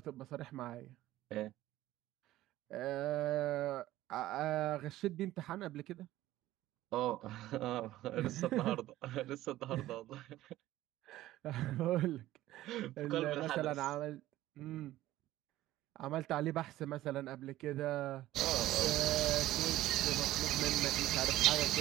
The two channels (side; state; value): left; quieter; 15.3 dB